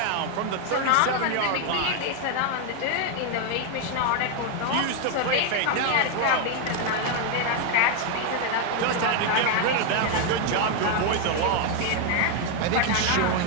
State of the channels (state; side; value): different; both; correlation 0.01